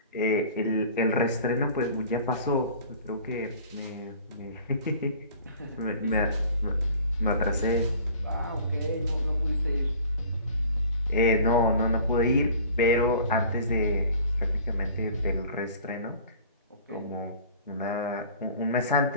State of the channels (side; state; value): both; inverted; correlation -0.46